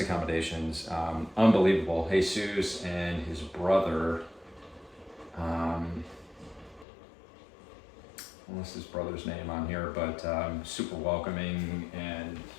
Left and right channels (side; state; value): right; drops out; at 6.9 s